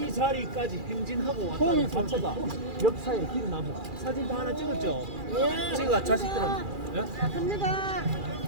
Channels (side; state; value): left; late; 2.4 ms